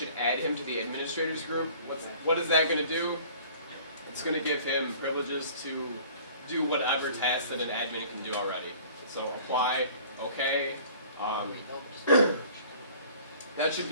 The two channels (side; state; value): both; inverted; correlation -0.49